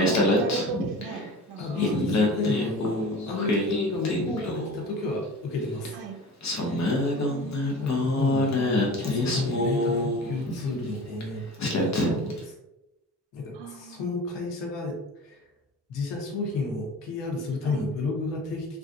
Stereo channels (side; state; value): both; normal; correlation 0.38